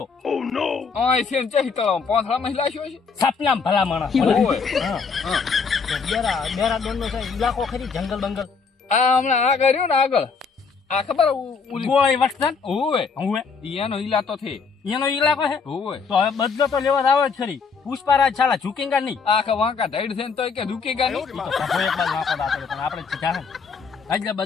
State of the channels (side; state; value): right; quieter; 5.3 dB